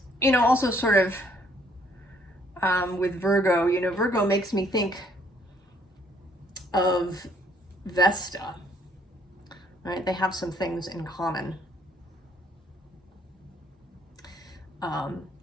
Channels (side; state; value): both; normal; correlation 0.65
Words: you know, also sort of with Virgo, you know, Virgo makes me think of Vesta. Right? They have some things in common.